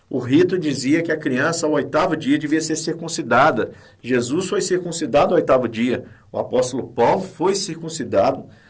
O rito dizia que a criança ao 8º dia devia ser circuncidada. Jesus foi circuncidado ao 8º dia. O apóstolo Paulo foi circuncidado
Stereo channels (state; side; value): identical; both; correlation 1.00